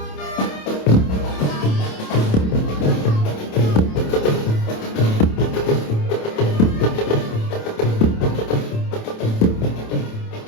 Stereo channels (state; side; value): late; right; 27 ms